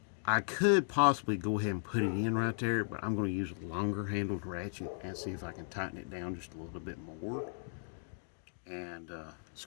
I could possibly go ahead and put it in right there, but I'm going to use a longer handled ratchet and see if I can tighten it down just a little bit more and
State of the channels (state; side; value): silent; right; digital silence